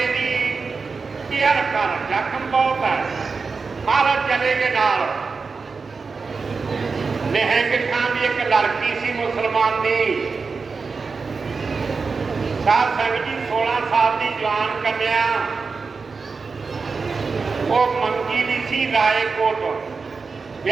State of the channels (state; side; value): quieter; left; 4.7 dB